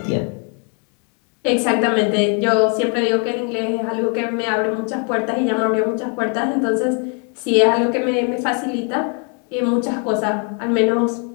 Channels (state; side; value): quieter; right; 38.5 dB